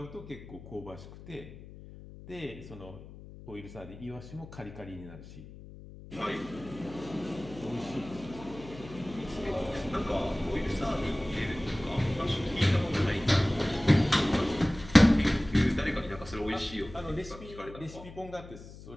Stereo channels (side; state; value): left; noise; hum, 16 dB below the sound